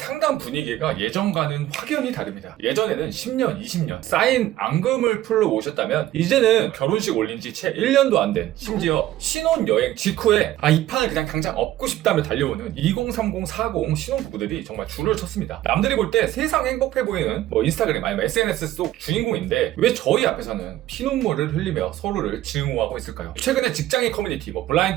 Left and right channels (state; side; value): quieter; left; 14.2 dB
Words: 분위기가 예전과는 확연히 다릅니다. 예전에는 10년, 20년 쌓인 앙금을 풀러 오셨다면 이제는 결혼식 올린 지 채 1년도 안 된, 심지어 신혼여행 직후에 이 판을 그냥 당장 엎고 싶다며 달려오는 2030, 40 신혼부부들이 정말 줄을 쳤습니다. 남들이 볼 때 세상 행복해 보이는 인스타그램 아니면 SNS 속 주인공인데 왜 저희 앞에서는 피눈물을 흘리며 서로를 증오하고 있을까요? 최근에 직장인 커뮤니티,